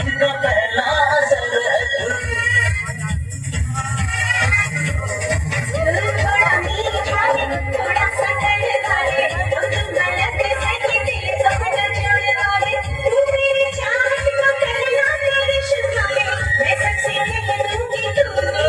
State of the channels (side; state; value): both; identical; correlation 1.00